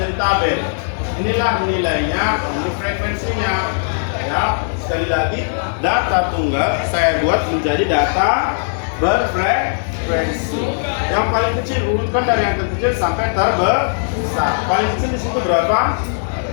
tabel. Inilah nilainya, ini frekuensinya. Ya, sekali lagi, data tunggal saya buat menjadi data berfrekuensi. Yang paling kecil urutkan dari yang terkecil sampai terbesar. Paling kecil di situ berapa?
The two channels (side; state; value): right; silent; digital silence